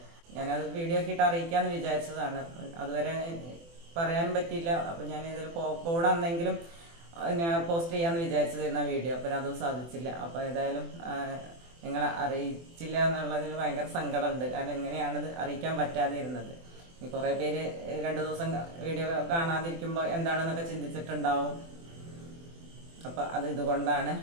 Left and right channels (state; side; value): late; left; 24 ms